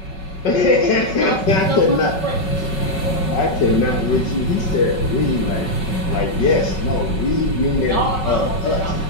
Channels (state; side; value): late; right; 5.3 ms